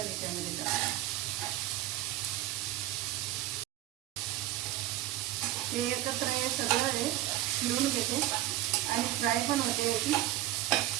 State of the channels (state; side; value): quieter; left; 15.3 dB